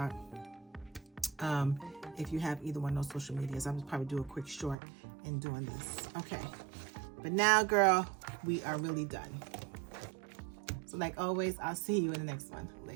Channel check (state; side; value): drops out; left; at 4.8 s